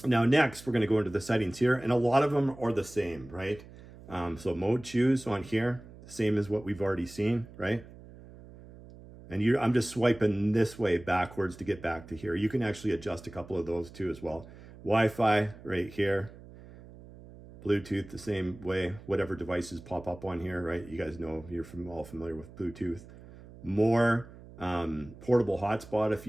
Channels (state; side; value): noise; right; hum, 19 dB below the sound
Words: Now next, we're going to go into the settings here, and a lot of them are the same, right? So mode choose on here, same as what we've already seen, right? And I'm just swiping this way backwards to get back to here. You can actually adjust a couple of those too as well. Wi-Fi right here. Bluetooth the same way, whatever devices pop up on here, right? You guys know, you're all familiar with Bluetooth. More portable hotspot if